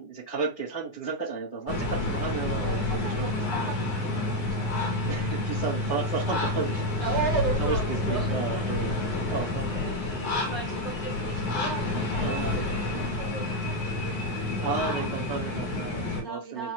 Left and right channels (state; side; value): late; right; 9.5 ms